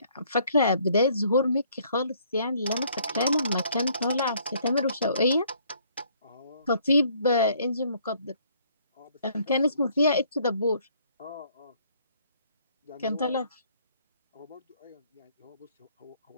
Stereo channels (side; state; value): both; inverted; correlation -0.63